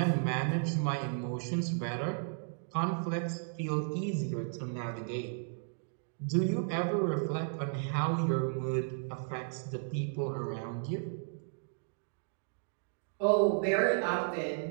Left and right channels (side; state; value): left; silent; digital silence